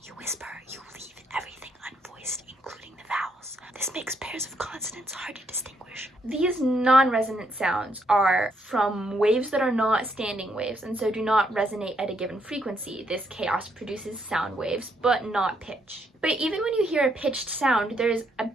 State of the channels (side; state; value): both; normal; correlation 0.74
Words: you whisper, you leave everything unvoiced, including the vowels. This makes pairs of consonants hard to distinguish. These non-resonant sounds are from waves that are not standing waves and so do not resonate at a given frequency. This chaos produces sound waves, but not pitch. But even when you hear a pitched sound, there's a